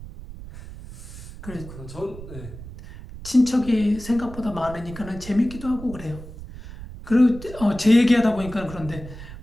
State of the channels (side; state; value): right; noise; rumble, 13 dB below the sound